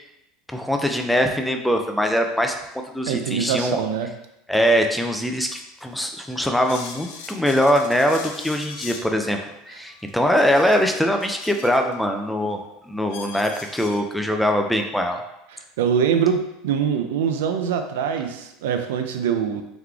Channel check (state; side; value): normal; both; correlation 0.60